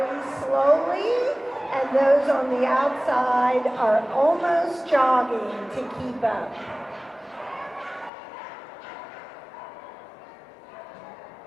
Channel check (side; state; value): right; drops out; at 8.1 s